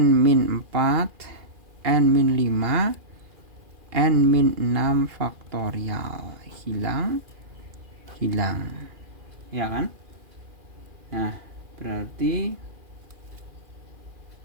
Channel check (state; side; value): late; left; 2.4 ms